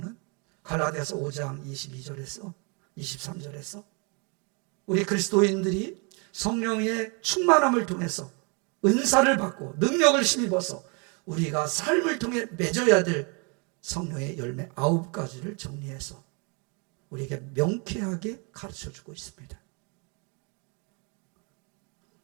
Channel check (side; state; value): left; quieter; 33.9 dB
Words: 갈라디아서 5장 22절에서 23절에서 우리 그리스도인들이 성령의 충만함을 통해서 은사를 받고 능력을 힘입어서 우리가 삶을 통해 맺어야 될 성령의 열매 9가지를 정리해서 우리에게 명쾌하게 가르쳐주고 있습니다.